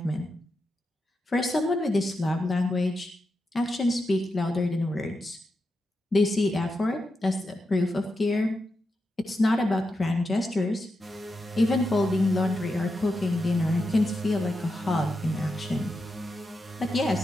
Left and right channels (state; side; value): normal; both; correlation 0.87